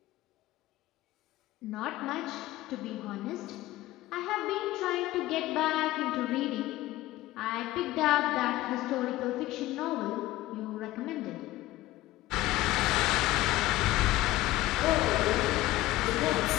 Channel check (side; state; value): right; quieter; 16.8 dB